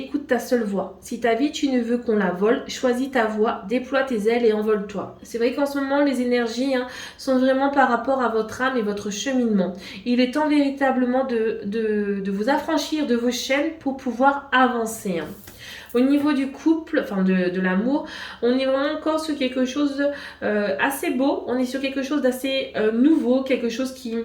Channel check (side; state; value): both; identical; correlation 1.00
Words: ta seule voix. Si ta vie tu ne veux qu'on la vole, choisis ta voix, déploie tes ailes et envole-toi. C'est vrai qu'en ce moment, les énergies sont vraiment par rapport à votre âme et votre cheminement. Il est temps véritablement de vous affranchir de vos chaînes pour pouvoir avancer. Au niveau du couple, enfin de l'amour, on est vraiment encore sur quelque chose assez beau, on est sur quelque chose d'assez nouveau, quelque chose qui,